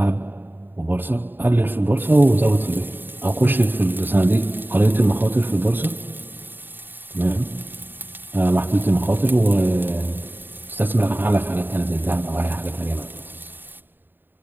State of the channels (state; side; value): late; left; 0.093 ms